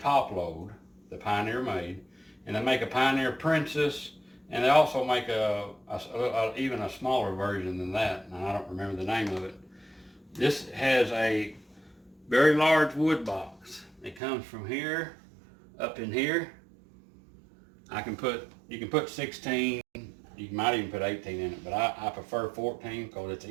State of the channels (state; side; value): drops out; left; at 14.2 s